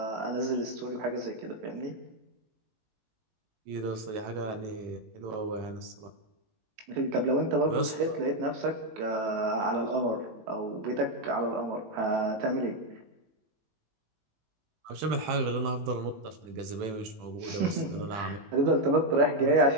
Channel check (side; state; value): left; late; 18 ms